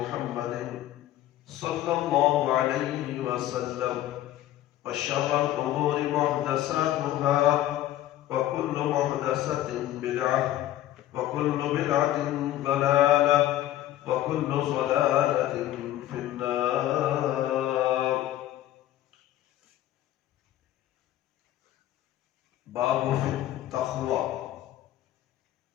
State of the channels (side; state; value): right; quieter; 13.5 dB